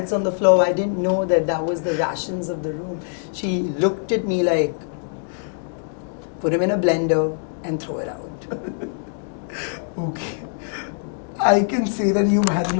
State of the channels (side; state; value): right; silent; digital silence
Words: on the floor. I didn't know that that was the rations of the room. She looked at me like, put him in a blender and throw it out. Okay. I can say that you've had an